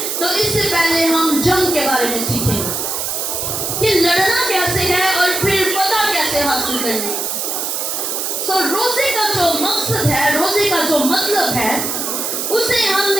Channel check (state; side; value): noise; right; hiss, 2 dB below the sound